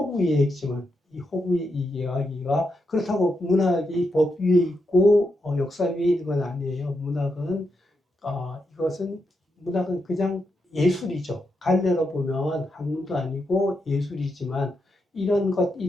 이해이지만 이 허구 이야기가 그렇다고 문학이 법 위에 있고 역사 위에 있는 건 아니에요. 문학은 그냥 예술이죠. 갈래로 보면 학문도 아니고 예술이지만 이런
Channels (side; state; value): both; normal; correlation 0.84